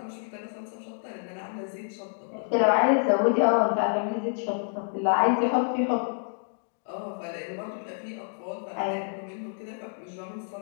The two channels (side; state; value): right; silent; digital silence